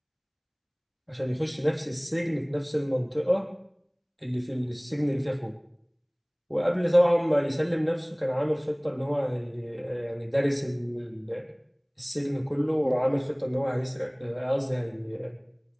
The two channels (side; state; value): both; identical; correlation 1.00